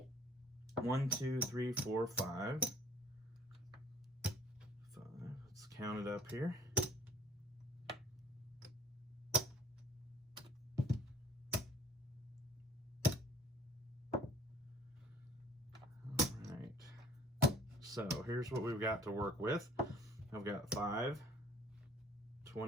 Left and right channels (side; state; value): both; normal; correlation 0.55